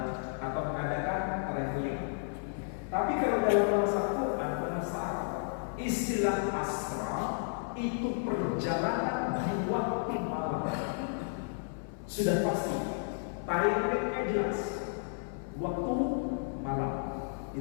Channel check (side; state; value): right; silent; 56 dB below the other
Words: atau mengadakan traveling. Tapi kalau dalam bahasa Quran, bahasa Arab, istilah asra itu perjalanan di waktu malam. Sudah pasti, timingnya jelas, waktu malam.